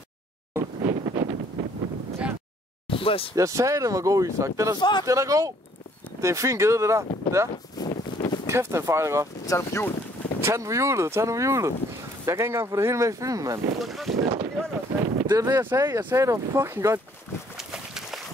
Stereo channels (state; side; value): normal; both; correlation 0.61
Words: Andreas. Jeg sagde, den var god, Isak. Den er god. Det er en fin gede, det der. Ja. Kæft, den fejler godt. Tag den på hjul. Tag den på hjulet. Jeg kan ikke engang få det hele med i filmen, mand. Det er det, jeg sagde. Jeg sagde, det var fucking godt.